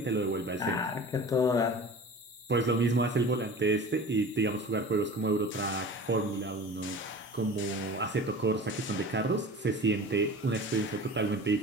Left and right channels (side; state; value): both; normal; correlation 0.38